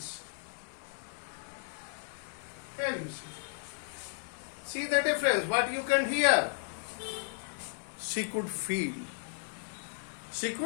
Here you see. See the difference. What you can hear, she could feel.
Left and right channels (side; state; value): right; silent; 55 dB below the other